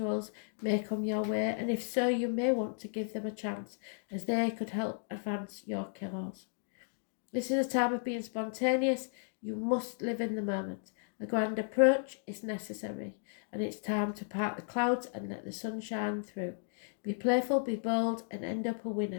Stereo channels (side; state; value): right; silent; digital silence